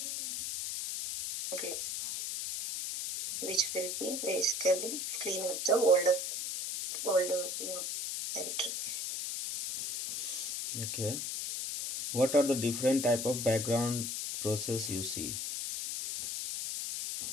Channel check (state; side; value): noise; left; hiss, 3 dB below the sound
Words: which will be basically clean up the older directory. Okay. What are the different type of background process you see?